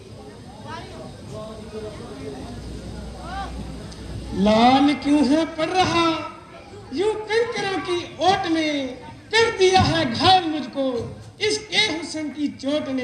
लाल क्यों है पड़ रहा यूं कंकरों की ओट में, कर दिया है घायल मुझको इसके हुस्न की चोट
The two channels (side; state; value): both; identical; correlation 1.00